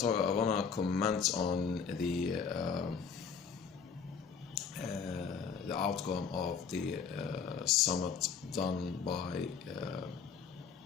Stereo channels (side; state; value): right; quieter; 6.4 dB